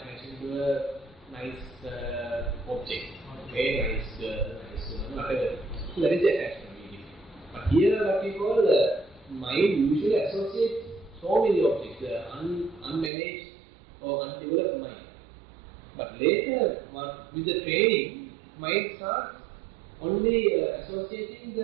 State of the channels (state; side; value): drops out; left; at 13.1 s